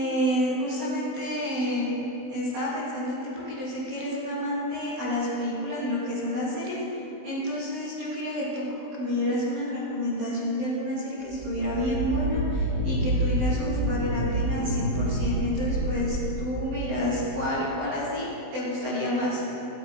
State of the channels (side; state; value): left; late; 24 ms